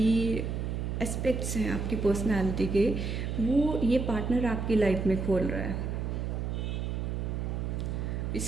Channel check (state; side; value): noise; right; hum, 2 dB below the sound